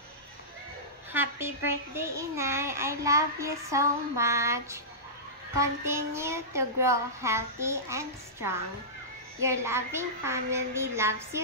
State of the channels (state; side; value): normal; both; correlation -0.17